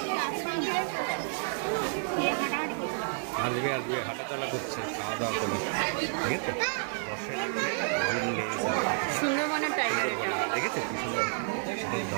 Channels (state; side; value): silent; left; 58 dB below the other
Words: আসবে আসবে হাঁটাচলা করছে, খাওয়া দাওয়া করে। ঠিক আছে, সুন্দরবনের টাইগার এটা। দেখেছে কি সুন্দর।